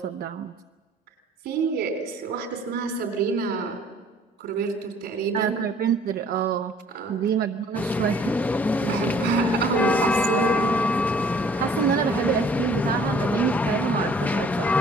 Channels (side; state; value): both; normal; correlation 0.55